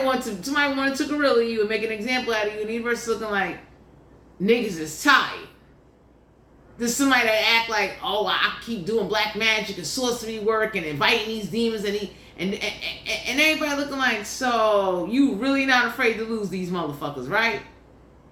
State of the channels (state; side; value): identical; both; correlation 1.00